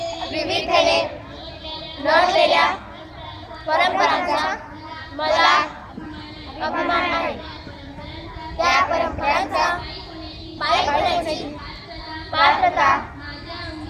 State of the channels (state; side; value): identical; both; correlation 1.00